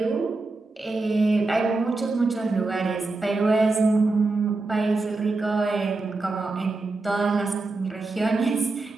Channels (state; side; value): quieter; left; 3.4 dB